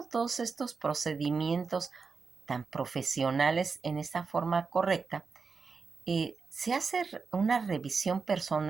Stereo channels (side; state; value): left; quieter; 4.9 dB